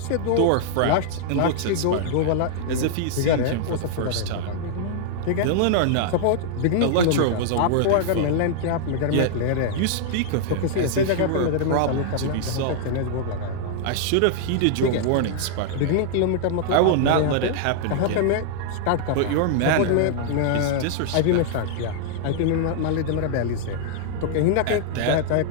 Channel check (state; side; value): different; both; correlation -0.01